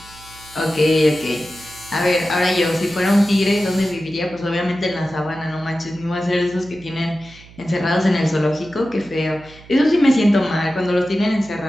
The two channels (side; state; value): right; noise; hum, 22 dB below the sound